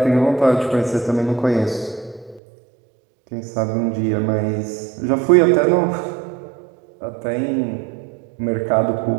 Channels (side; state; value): left; drops out; at 2.4 s